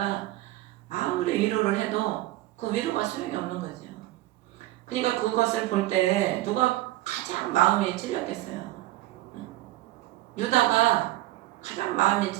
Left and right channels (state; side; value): quieter; left; 16.7 dB